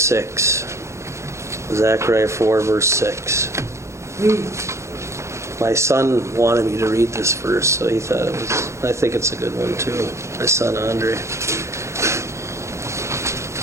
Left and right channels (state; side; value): late; left; 0.14 ms